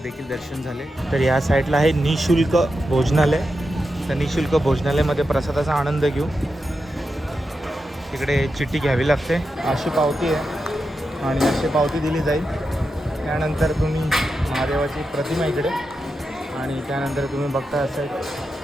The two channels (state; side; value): normal; both; correlation 0.88